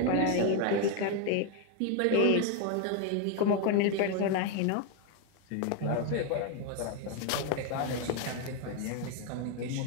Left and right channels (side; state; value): both; different; correlation 0.01